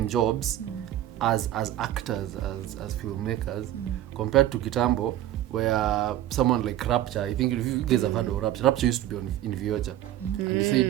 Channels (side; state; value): left; quieter; 13.2 dB